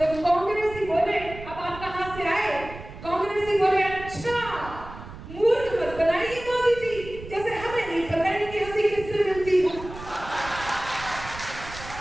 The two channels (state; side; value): noise; right; rumble, 14 dB below the sound